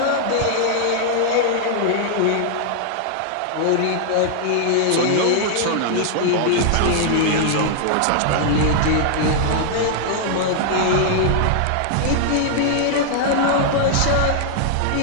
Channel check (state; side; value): different; both; correlation -0.01